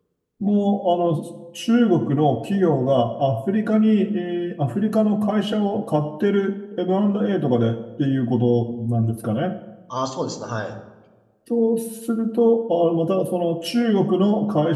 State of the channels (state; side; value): identical; both; correlation 1.00